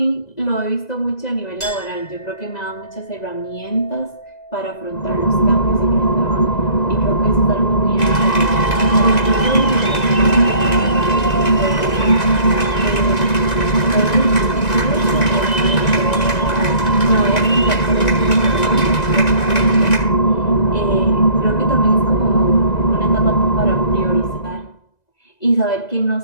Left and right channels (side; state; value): right; late; 2.0 ms